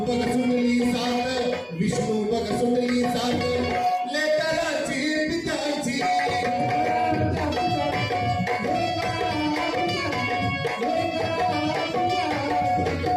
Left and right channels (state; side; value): identical; both; correlation 1.00